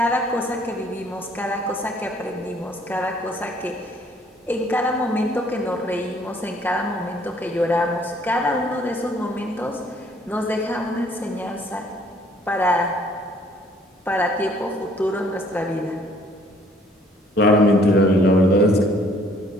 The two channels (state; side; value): normal; both; correlation 0.60